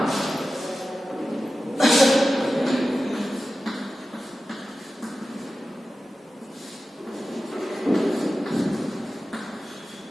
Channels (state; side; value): normal; both; correlation 0.94